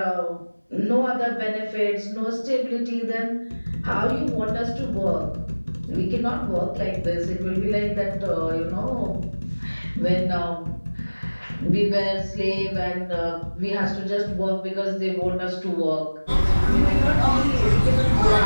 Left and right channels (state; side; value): inverted; both; correlation -1.00